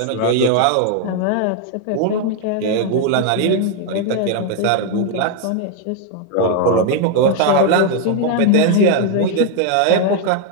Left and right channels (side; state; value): both; different; correlation 0.00